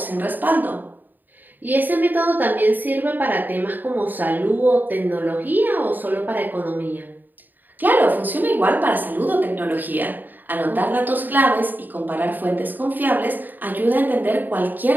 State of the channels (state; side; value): late; left; 0.088 ms